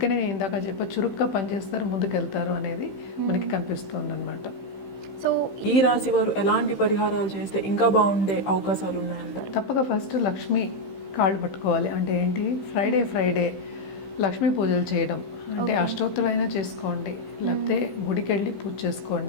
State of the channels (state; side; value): late; right; 15 ms